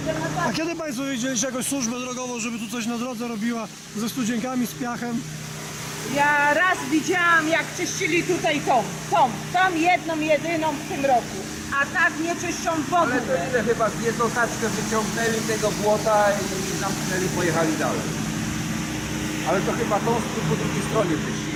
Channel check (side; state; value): both; identical; correlation 1.00